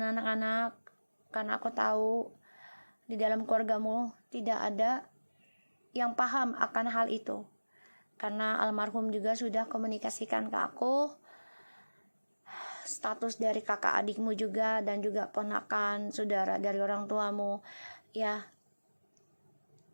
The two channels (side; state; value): both; inverted; correlation -1.00